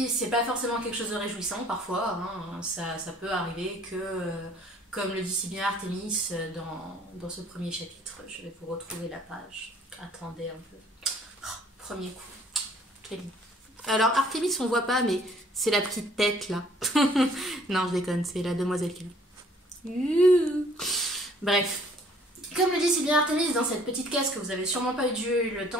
c'est pas forcément quelque chose de réjouissant parfois, ça peut arriver que, comme le dit si bien Artemis dans ce premier chapitre, je vais vous retrouver la page, attendez un peu, premier coup, très vite. Alors Artemis on voit pas mais c'est la petite tête là, non je déconne, c'est la demoiselle qui est. Bref. Comme le dit si bien Artemis dans cette petite case que vous avez sûrement pas eu le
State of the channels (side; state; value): both; normal; correlation 0.58